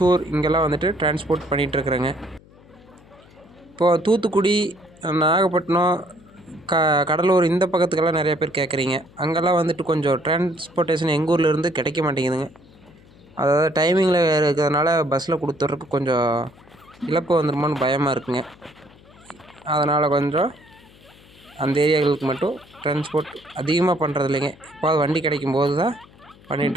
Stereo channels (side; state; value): left; noise; hum, 25 dB below the sound